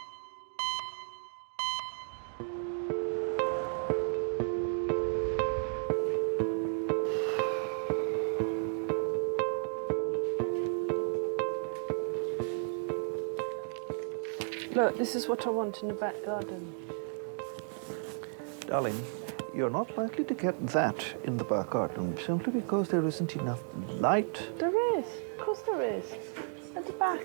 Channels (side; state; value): left; silent; 55 dB below the other